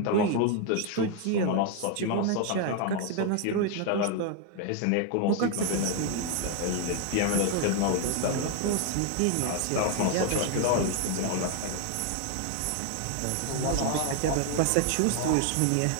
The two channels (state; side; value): different; both; correlation 0.01